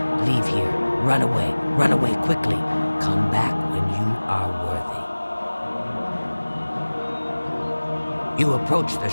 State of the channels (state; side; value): inverted; both; correlation -1.00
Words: leave here. Run away. Run away quickly. Come back when you are worthy. You approach the